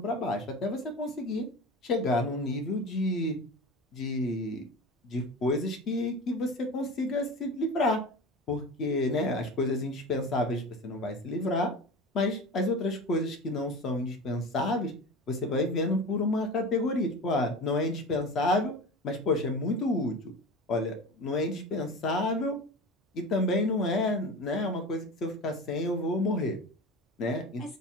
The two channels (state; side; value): normal; both; correlation 0.31